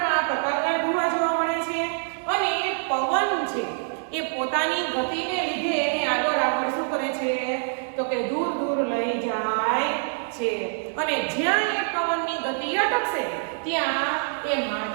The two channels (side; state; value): left; silent; 61 dB below the other